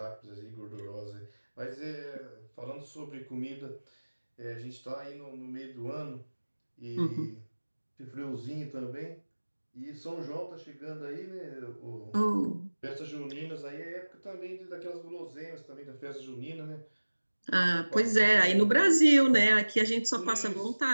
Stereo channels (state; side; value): inverted; both; correlation -1.00